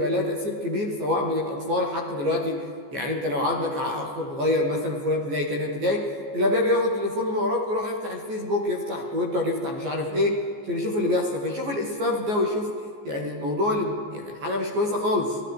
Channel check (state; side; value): late; left; 14 ms